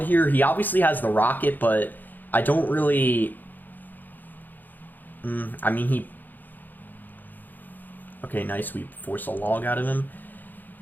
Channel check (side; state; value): right; late; 0.087 ms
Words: here. He obviously has the rocket, but I don't really... I mean, he... Okay, nice. We force a log out of him.